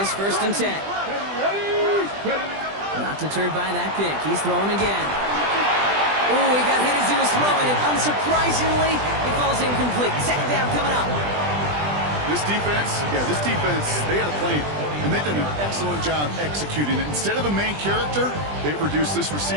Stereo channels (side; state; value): left; late; 20 ms